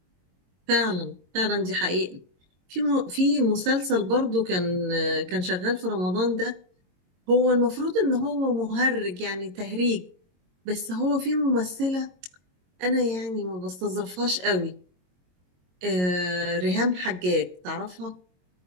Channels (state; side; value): late; left; 22 ms